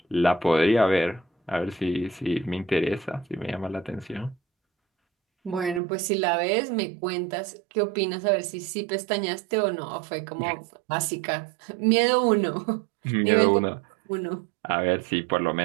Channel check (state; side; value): drops out; left; at 5.8 s